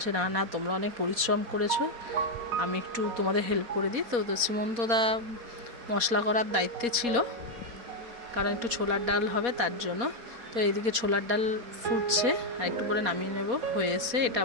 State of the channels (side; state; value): left; late; 4.2 ms